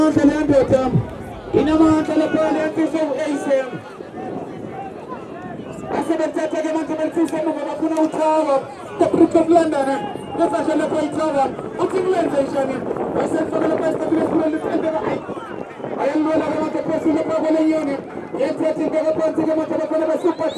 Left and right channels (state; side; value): identical; both; correlation 1.00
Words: and Anderton. In a month and a penalty so ASM. I said that I am going to say Makuna Tower, the Brook of London, the Fashion of White Tower, what's in London? I said for the best of the world. I am going to want to pursue the problem unit. Yet, I think I want to get a super